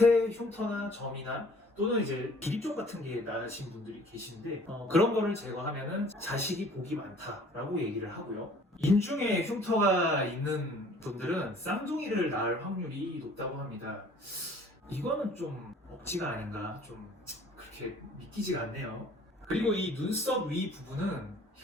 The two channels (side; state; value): both; normal; correlation 0.53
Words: 흉터나 점이나 또는 이제 비립종 같은 게 나신 분들이 계신데 그런 거를 제거하면은 자식이 복이 많다라고 얘기를 하고요. 인중에 흉터가 있는 분들은 쌍둥이를 낳을 확률이 높다고 합니다. 이거는 좀 억지가 아닌가 좀 그렇게 믿기지가 않네요. 그리고 이 눈썹 위 부분은